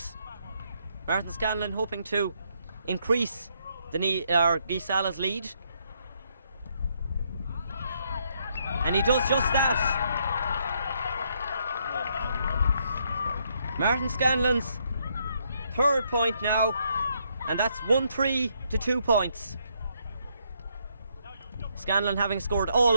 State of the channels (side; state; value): both; inverted; correlation -0.73